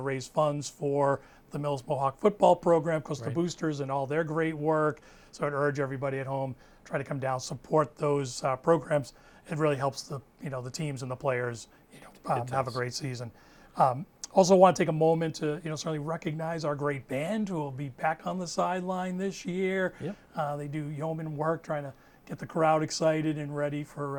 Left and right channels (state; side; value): identical; both; correlation 1.00